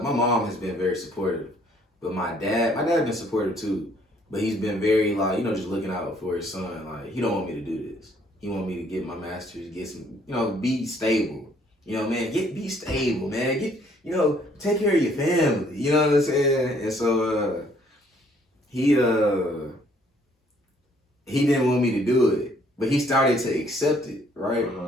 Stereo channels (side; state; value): both; normal; correlation 0.63